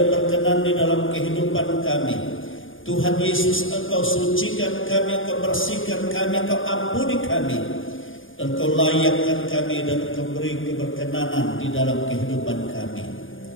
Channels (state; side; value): late; right; 0.58 ms